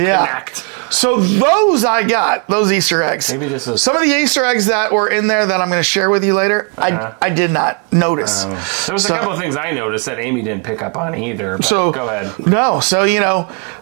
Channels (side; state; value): left; quieter; 38.5 dB